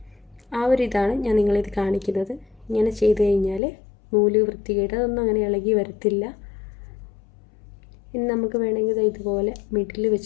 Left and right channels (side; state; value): right; drops out; at 3.6 s